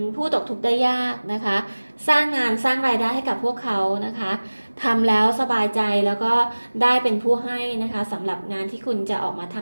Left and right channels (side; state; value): both; inverted; correlation -1.00